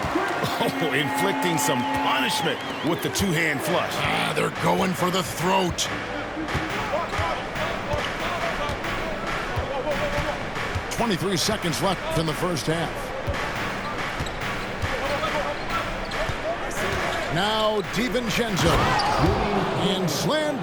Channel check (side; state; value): both; identical; correlation 1.00